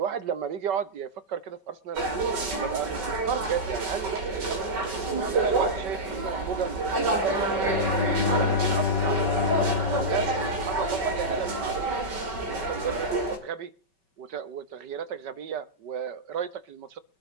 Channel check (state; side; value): late; left; 5.2 ms